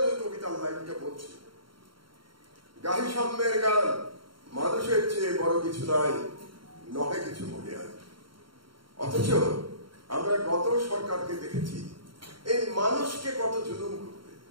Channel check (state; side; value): late; left; 0.73 ms